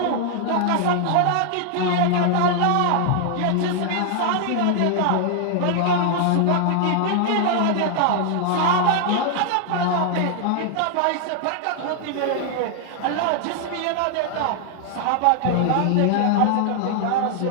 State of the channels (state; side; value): different; both; correlation 0.00